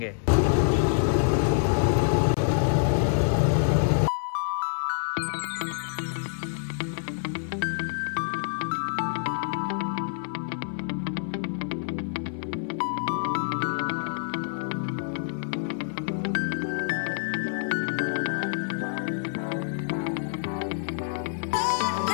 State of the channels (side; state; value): right; silent; 60 dB below the other